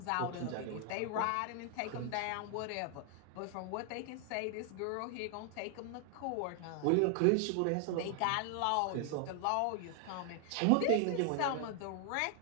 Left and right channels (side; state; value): both; different; correlation 0.00